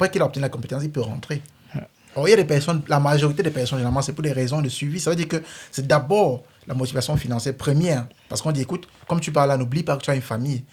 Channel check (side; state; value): both; identical; correlation 1.00